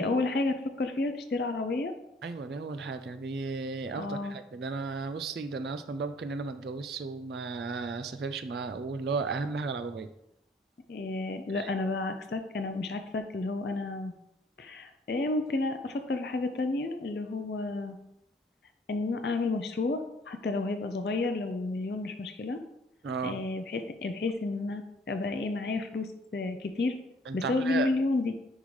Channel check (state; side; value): normal; both; correlation 0.58